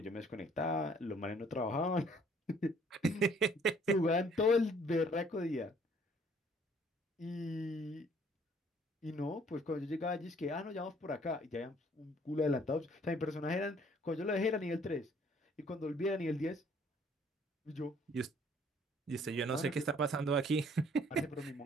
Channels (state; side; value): normal; both; correlation 0.60